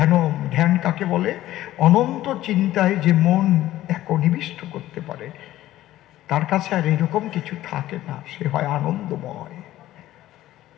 ধ্যান কাকে বলে? অনন্ত চিন্তায় যে মন একনিবিষ্ট করতে পারে, তার কাছে আর এরকম কিছু থাকে না, সে হয় আনন্দময়।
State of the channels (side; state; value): right; quieter; 14.7 dB